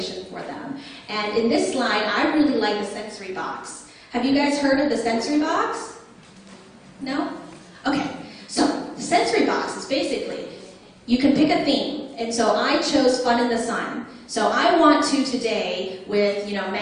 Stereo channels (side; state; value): both; identical; correlation 1.00